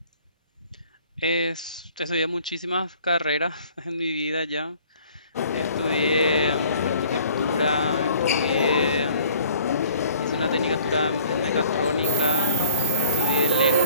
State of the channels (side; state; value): both; inverted; correlation -0.52